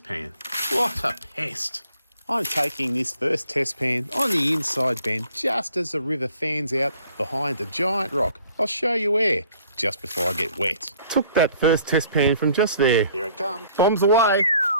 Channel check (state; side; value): inverted; both; correlation -0.58